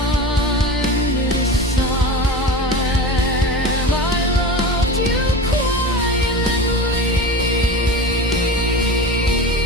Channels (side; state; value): both; normal; correlation 0.30